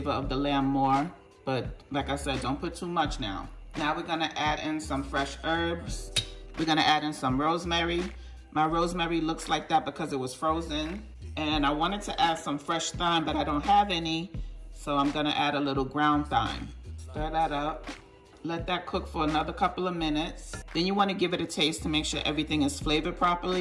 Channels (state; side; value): identical; both; correlation 1.00